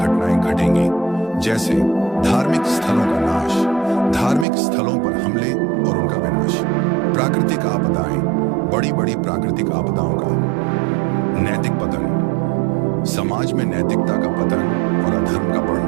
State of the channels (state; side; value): drops out; left; at 4.5 s